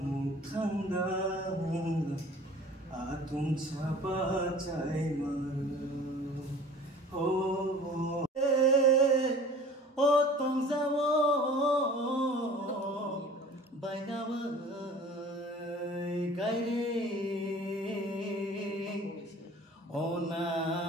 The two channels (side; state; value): both; normal; correlation 0.45